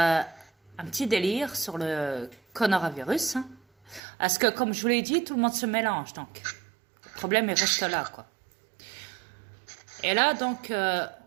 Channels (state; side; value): drops out; left; at 4.0 s